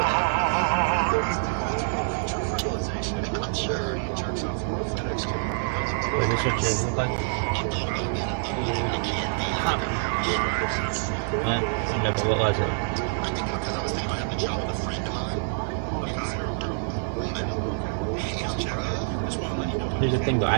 Is this what yours look like? What was it? Here's the thing though,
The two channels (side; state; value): left; silent; digital silence